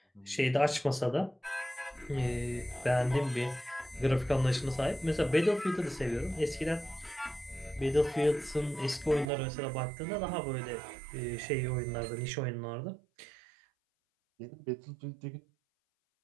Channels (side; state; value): left; drops out; at 9.3 s